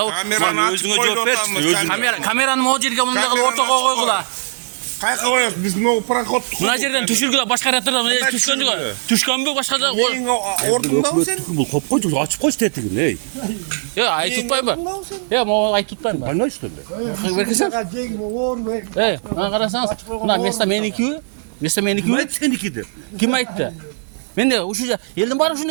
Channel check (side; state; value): left; silent; 57 dB below the other